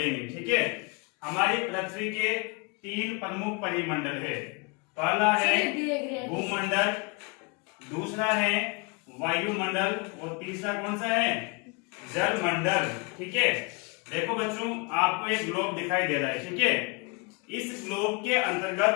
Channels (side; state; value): right; quieter; 31.1 dB